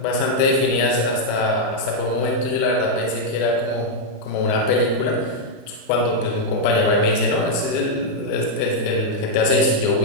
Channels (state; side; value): late; right; 34 ms